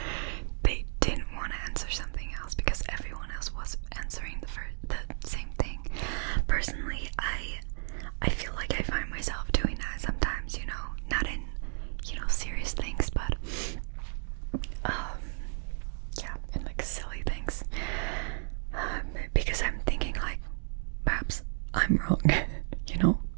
they didn't want to answer something else because everyone else was answering the same thing. Personally, I feel like I find myself doing that sometimes, you know, not in, you know, serious things, but yeah, in like silly things. Because I'm thinking like, perhaps I'm wrong, you know?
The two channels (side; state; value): left; silent; 56 dB below the other